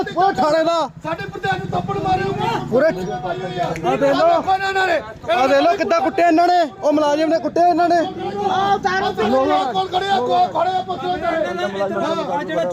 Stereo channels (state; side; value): identical; both; correlation 1.00